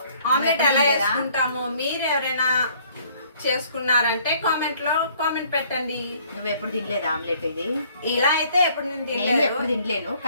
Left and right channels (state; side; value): inverted; both; correlation -0.59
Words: ఆమ్లెట్ ఎలా వేసుకుంటాము మీరు ఎవరైనా చేసుకున్నారంటే కామెంట్ పెట్టండి. నువ్వు ఎప్పుడు తినలేదు ఆమ్లెట్? ఇది ఇలా అయితే ఎప్పుడు నేను తినలేను,